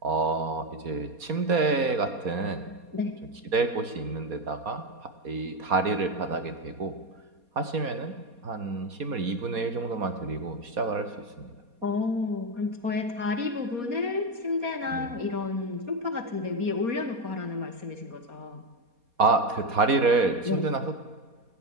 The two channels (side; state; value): left; late; 4.2 ms